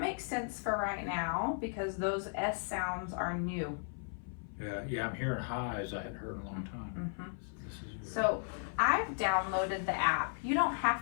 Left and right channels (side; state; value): right; silent; 54 dB below the other